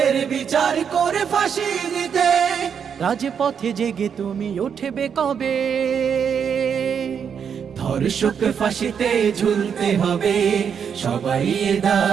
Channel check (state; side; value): quieter; left; 7.3 dB